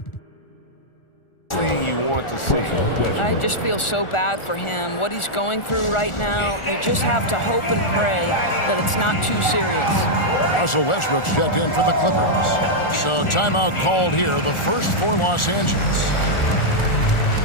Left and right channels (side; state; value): right; late; 1.4 ms